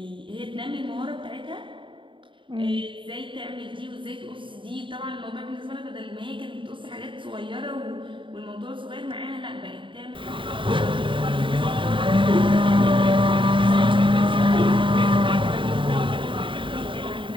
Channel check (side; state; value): left; late; 0.24 ms